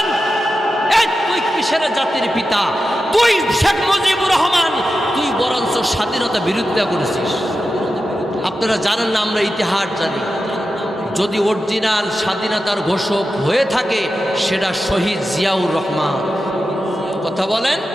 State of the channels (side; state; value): both; normal; correlation 0.91